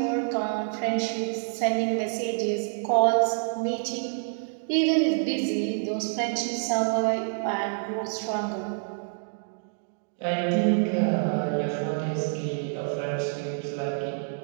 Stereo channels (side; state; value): left; silent; digital silence